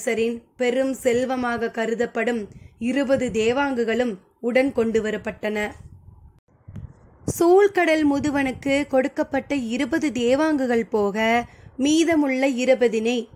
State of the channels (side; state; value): both; identical; correlation 1.00